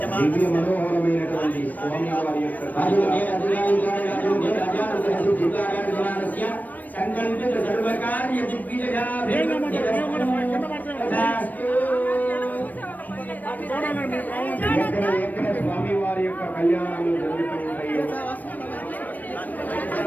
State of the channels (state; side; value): late; right; 0.083 ms